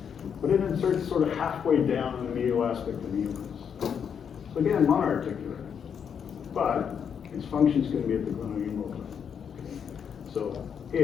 but it inserts sort of halfway down in the medial aspect of the humerus. So again, monoarticular, but its function is going to be at the glenohumeral joint. Okay. So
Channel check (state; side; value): quieter; right; 7.5 dB